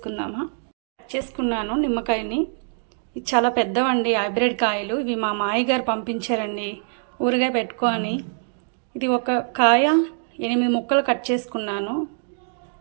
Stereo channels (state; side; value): silent; left; digital silence